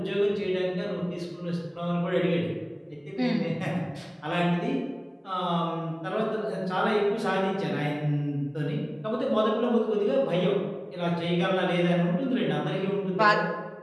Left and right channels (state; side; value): identical; both; correlation 1.00